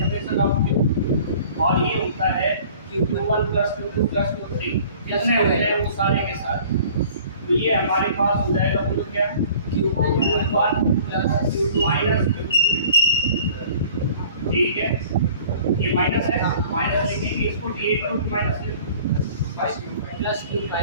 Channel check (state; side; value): inverted; both; correlation -0.49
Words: ऑफ क्यू। और ये होता है Q1 + Q2 + Q3 जितने होते हैं वो सारे के सारे। तो ये हमारे पास हो जाएगा, बोलो क्या, Q1 + Q2 ठीक है। ये माइनस है, माइनस लिखेंगे इसको, Q8 minus +Q5 +